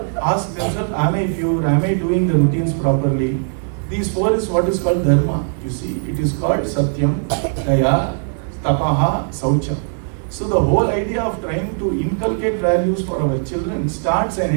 ask themselves, am I pure? Am I doing the routines properly? These four is what is called dharma. You see, it is called satyam, daya, tapaha, saucha. So the whole idea of trying to inculcate values for our children starts and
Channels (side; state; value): left; silent; 67 dB below the other